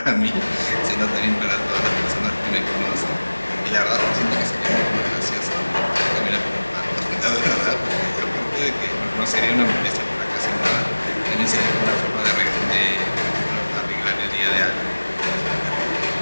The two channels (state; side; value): inverted; both; correlation -1.00